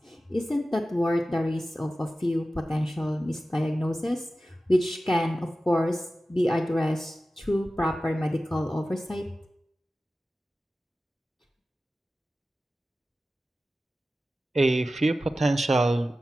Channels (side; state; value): both; normal; correlation 0.95